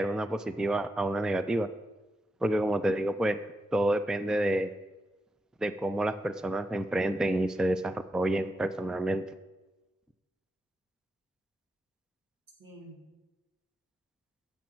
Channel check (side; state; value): both; normal; correlation 0.88